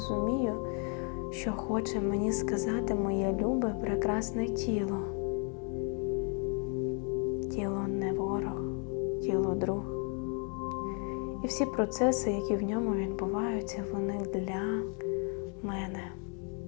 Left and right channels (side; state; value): right; quieter; 39.0 dB